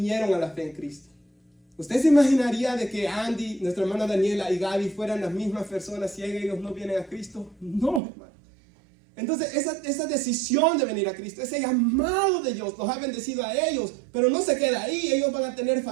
a la fe en Cristo. ¿Usted se imaginaría de que Andy, nuestra hermana Daniela y Gaby fueran las mismas personas si ellos no vienen a Cristo? No, hermano. Entonces esa decisión de venir a Cristo, ese llamado de Dios, los ha bendecido a ellos, pero no se queda ahí. Ellos van a tener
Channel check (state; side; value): drops out; left; at 8.0 s